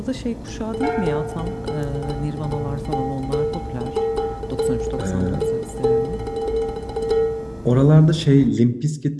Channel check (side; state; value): both; identical; correlation 1.00